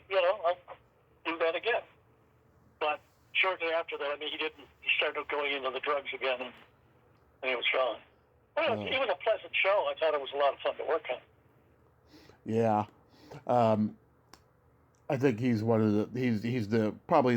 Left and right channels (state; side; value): identical; both; correlation 1.00